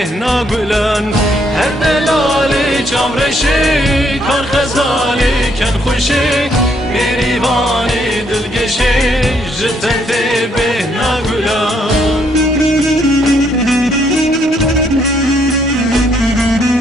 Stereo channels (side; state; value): both; normal; correlation 0.71